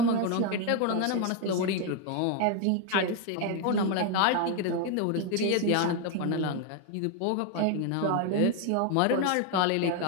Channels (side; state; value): both; different; correlation 0.01